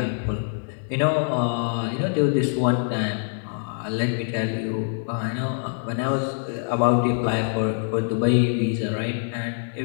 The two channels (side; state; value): right; silent; digital silence